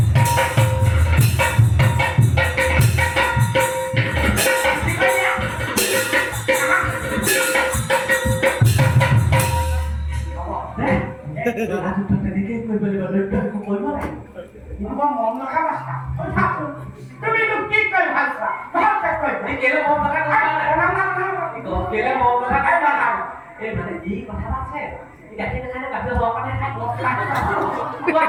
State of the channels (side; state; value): both; identical; correlation 1.00